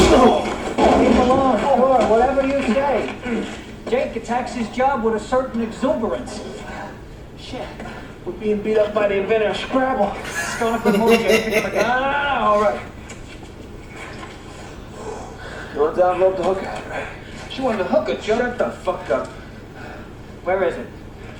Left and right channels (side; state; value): both; identical; correlation 1.00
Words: Leave him alone, sure, whatever you say. Jake attacks his job with a certain exuberance. Shit. We're being beat up by the inventor of Scrabble. Going up the moon, Jake. No, all right. You want the envelope to hook out, right? She wanted to hook her, Joe. Shut the fuck up. Where is it?